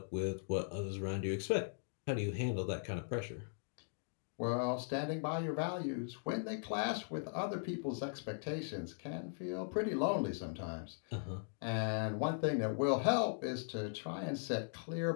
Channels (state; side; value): silent; right; digital silence